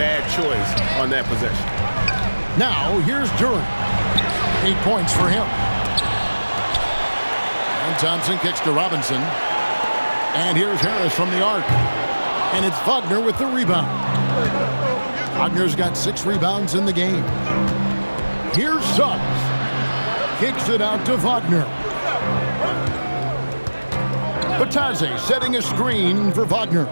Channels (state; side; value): inverted; both; correlation -1.00